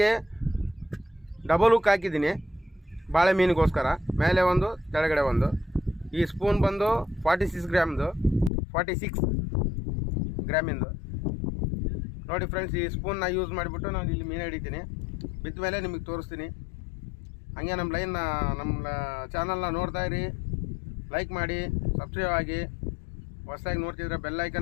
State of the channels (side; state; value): right; drops out; at 8.5 s